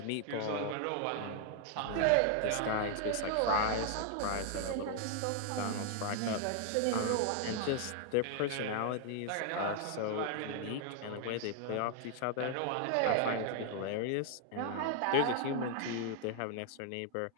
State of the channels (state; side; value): different; both; correlation 0.00